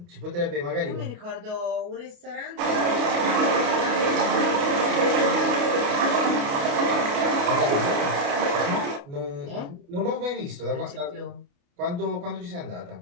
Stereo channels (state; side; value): late; left; 29 ms